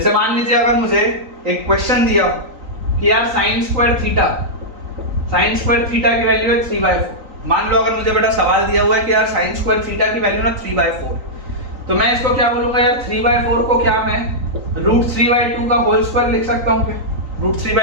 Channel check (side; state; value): left; late; 3.9 ms